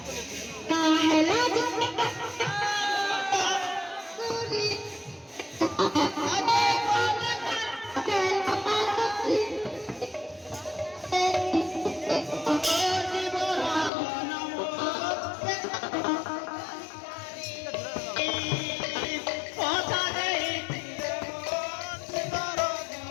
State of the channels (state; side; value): drops out; right; at 13.9 s